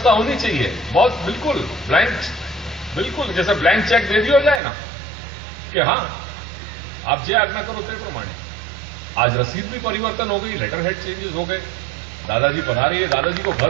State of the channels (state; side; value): drops out; left; at 4.6 s